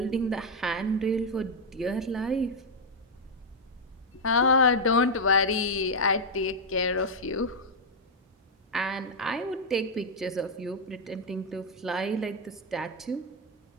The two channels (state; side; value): normal; both; correlation -0.01